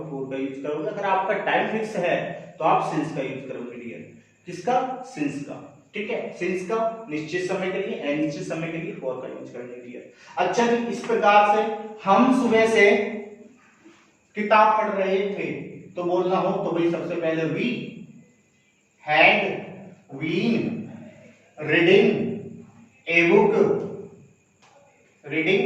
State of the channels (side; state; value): both; identical; correlation 1.00